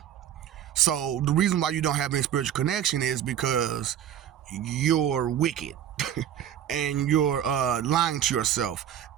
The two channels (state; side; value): quieter; left; 10.2 dB